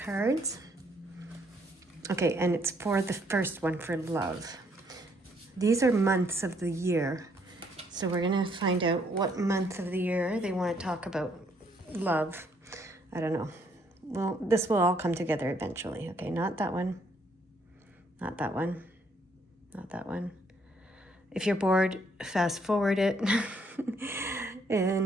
Okay, and it's for the first one, for love. These are months of the year. So we're going to find out what month of the year they want to talk about love. I don't know. Well, this will all come together eventually. Okay, not that one. Not that one. Not that one. If you're bored, fast forward it.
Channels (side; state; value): both; normal; correlation 0.69